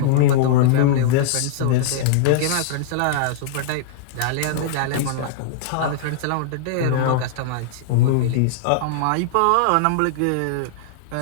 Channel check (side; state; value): both; different; correlation -0.02